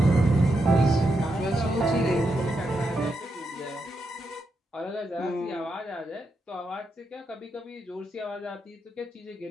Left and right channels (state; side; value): normal; both; correlation 0.83